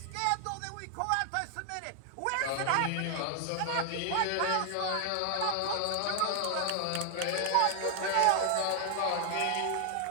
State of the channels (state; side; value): different; both; correlation 0.00